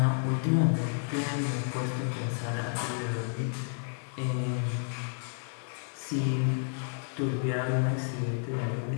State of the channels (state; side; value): silent; right; digital silence